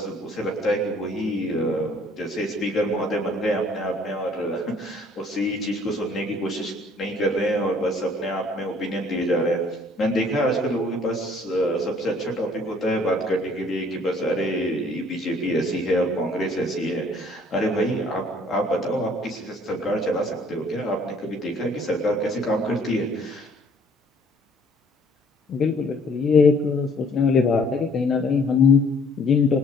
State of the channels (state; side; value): normal; both; correlation 0.59